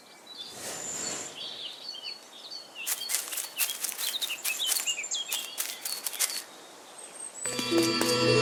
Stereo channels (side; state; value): both; identical; correlation 1.00